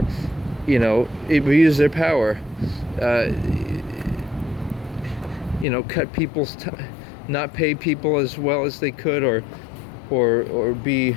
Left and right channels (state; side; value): drops out; right; at 5.7 s